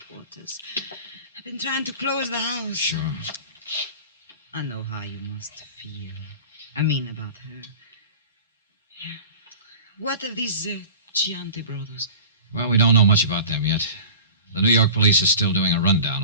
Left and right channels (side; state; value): both; inverted; correlation -0.39